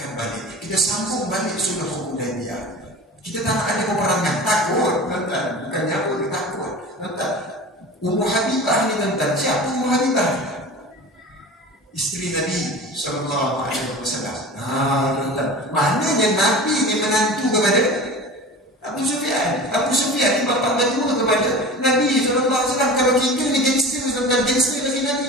balik. Kita sambung balik sulh Hudaibiyah. Kita tak nak ada peperangan. Takut, tuan. Bukannya apa, dia takut. Tuan, Ummu Habibah ni tuan. Siapa Ummu Habibah? Isteri Nabi SAW. Tuan. Maknanya Nabi ni menantu kepada Abu Sufyan. Abu Sufyan ni bapa berdua kepada Nabi SAW. Kalau kita ni gangster, tuan. Gangster lagi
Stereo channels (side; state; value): both; normal; correlation 0.35